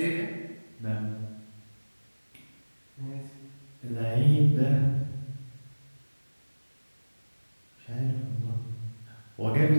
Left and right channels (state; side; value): inverted; both; correlation -1.00